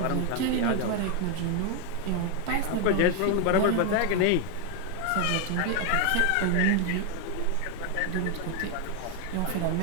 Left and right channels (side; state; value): both; different; correlation 0.01